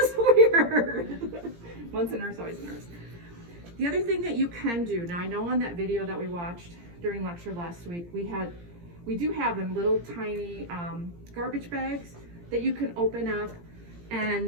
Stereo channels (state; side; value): late; left; 17 ms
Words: weird. Once a nurse, always a nurse. The other thing that you can do, now I know on that video that we watched during lecture last week, we do have them little tiny garbage bags that you can open up,